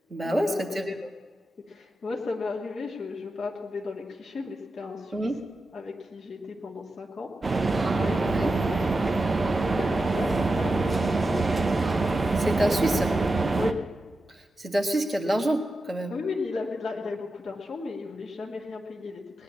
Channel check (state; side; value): normal; both; correlation 0.90